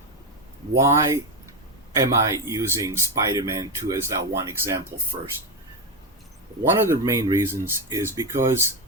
why am I using Spider-Man 2 as that one example first? One of the main reasons is because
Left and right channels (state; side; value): normal; both; correlation 0.10